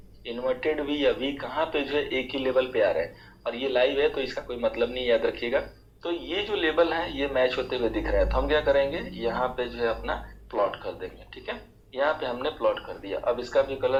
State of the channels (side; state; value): both; identical; correlation 1.00